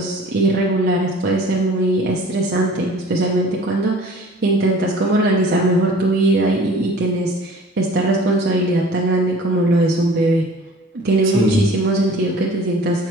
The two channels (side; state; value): both; normal; correlation 0.47